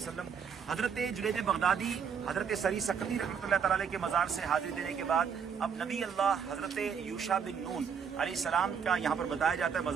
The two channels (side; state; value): left; quieter; 7.0 dB